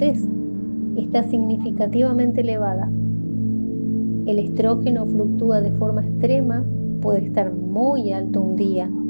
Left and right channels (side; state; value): both; inverted; correlation -1.00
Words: Está significativamente elevada. El estrógeno fluctúa de forma extrema, puede estar muy alto un día